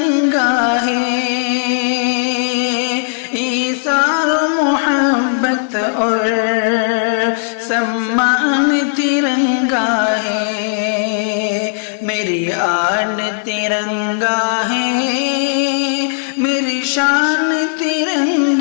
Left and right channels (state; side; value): silent; right; digital silence